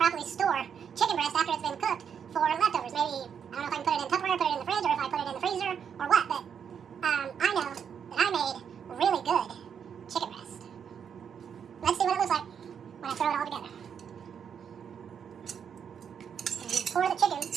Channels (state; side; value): quieter; left; 7.6 dB